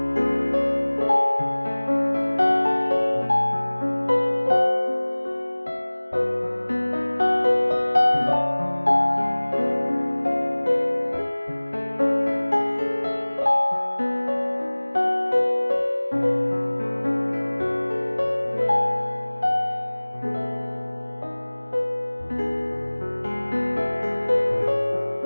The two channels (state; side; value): inverted; both; correlation -1.00